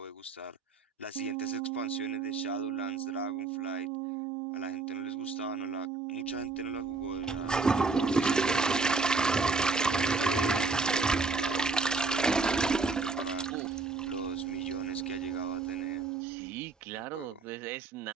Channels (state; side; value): quieter; left; 4.0 dB